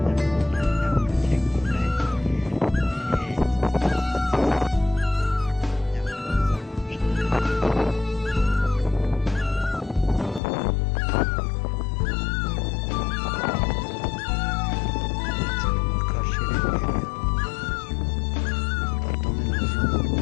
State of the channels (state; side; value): drops out; right; at 10.4 s